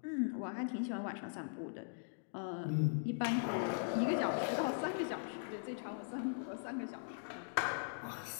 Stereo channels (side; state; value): right; silent; digital silence